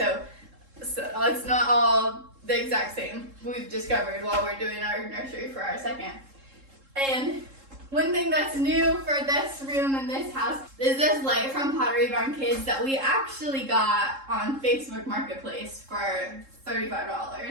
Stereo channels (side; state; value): left; late; 3.7 ms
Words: it's not all the exact same. We've discovered while we're doing our nursery for our second. And one thing that's new for this room in this house is this light from Pottery Barn Kids that we actually got on Facebook Marketplace for